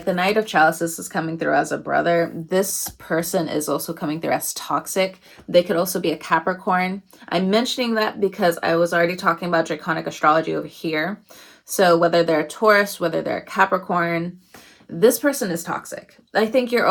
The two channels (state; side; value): identical; both; correlation 1.00